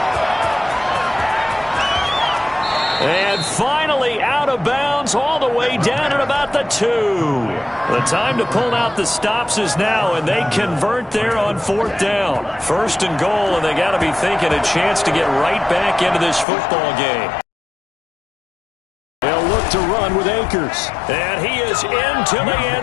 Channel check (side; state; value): right; drops out; at 16.4 s